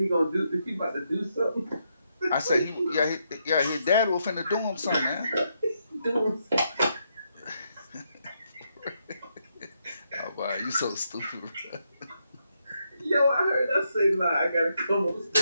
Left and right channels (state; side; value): inverted; both; correlation -0.79